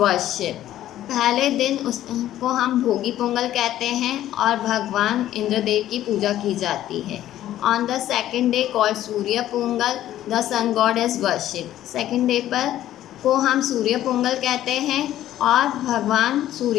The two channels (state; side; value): quieter; right; 12.9 dB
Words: पहले दिन उसको हम भोगी पोंगल कहते हैं और भगवान इंद्रदेव की पूजा की जाती है। On the second day called Surya Pongal the sun god is worship. Second day पर को हम सूर्य पोंगल कहते हैं और भगवान